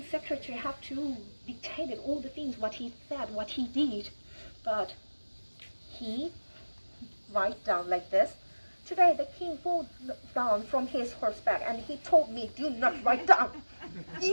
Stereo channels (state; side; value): inverted; both; correlation -1.00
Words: secretary had to dictate all the things, what he said, what he did. But he write down like this. Today the king fell down from his horseback and he told me, do not write down.